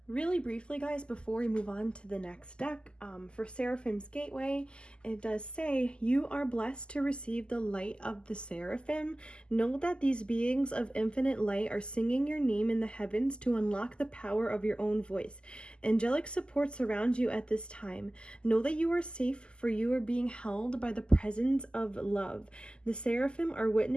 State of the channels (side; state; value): right; late; 0.049 ms